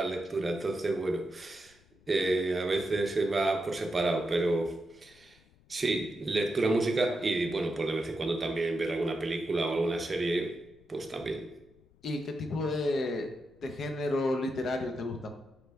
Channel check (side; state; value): left; noise; rumble, 29 dB below the sound